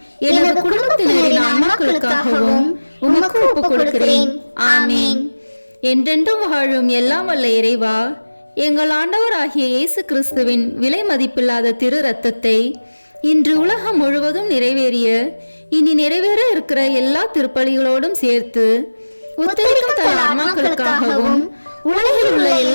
எனது குடும்பத்தினரின் ஆன்மாக்களுக்காகவும் உமக்கு ஒப்புக் கொடுக்கிறேன். ஆமேன். என்றென்றும் வாழும் எல்லாம் வல்ல இறைவா, எங்கள் ஆண்டவராகிய இயேசு கிறிஸ்துவின் விலை மதிப்பில்லாத திரு இரத்தத்தை இன்று உலகம் முழுவதும் நிறைவேறிய இனி நிறைவேற இருக்கிற எல்லா திருப்பலிகளோடும் சேர்த்து உத்தரிக்கும் தல ஆன்மாக்களுக்காகவும் உலகில் உள்ள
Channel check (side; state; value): both; inverted; correlation -1.00